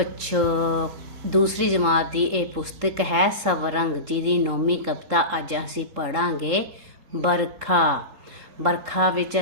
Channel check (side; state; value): left; late; 3.7 ms